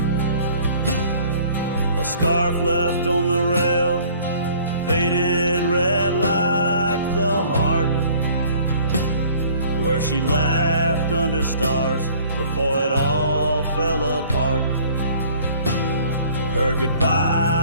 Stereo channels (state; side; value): inverted; both; correlation -0.53